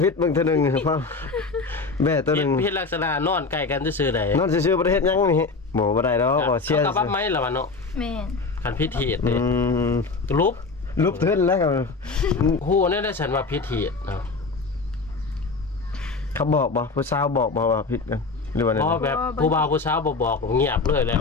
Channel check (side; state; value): right; quieter; 4.0 dB